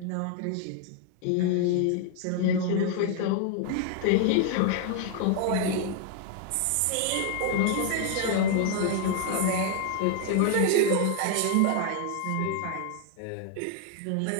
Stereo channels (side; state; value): both; different; correlation 0.00